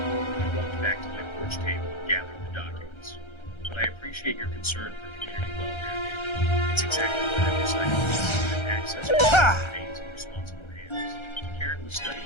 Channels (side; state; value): right; late; 1.3 ms